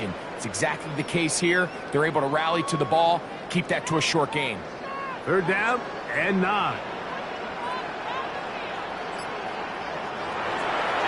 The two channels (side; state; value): both; identical; correlation 1.00